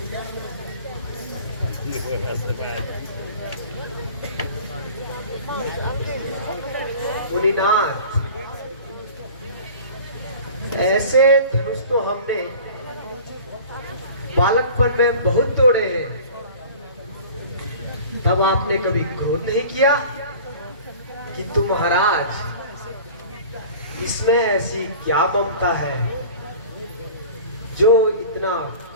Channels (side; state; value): both; inverted; correlation -0.42